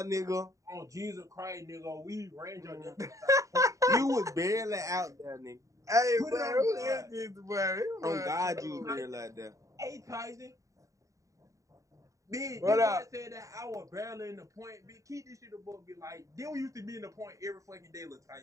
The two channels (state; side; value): late; left; 0.16 ms